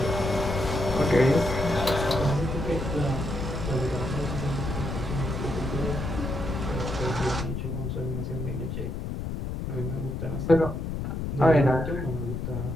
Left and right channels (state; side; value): noise; left; rumble, 4 dB below the sound